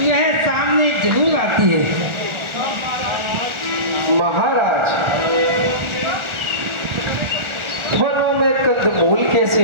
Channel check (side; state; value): left; late; 1.4 ms